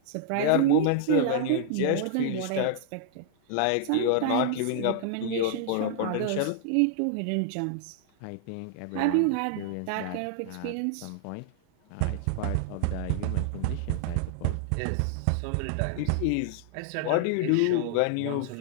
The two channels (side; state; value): both; different; correlation -0.01